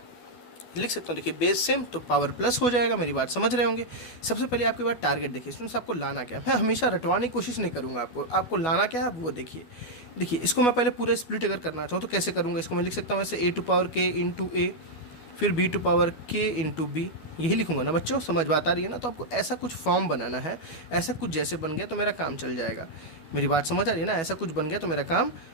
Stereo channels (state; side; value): late; right; 12 ms